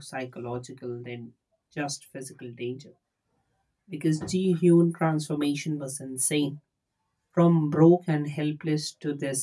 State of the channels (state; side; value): identical; both; correlation 1.00